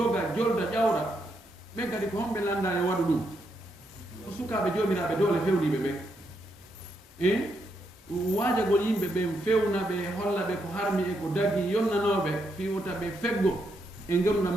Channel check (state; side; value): normal; both; correlation 0.79